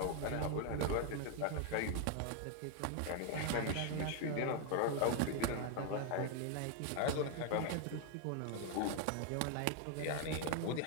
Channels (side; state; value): both; different; correlation 0.01